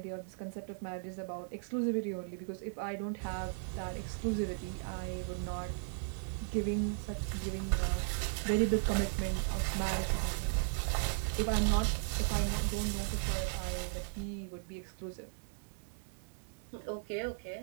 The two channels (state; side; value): silent; left; digital silence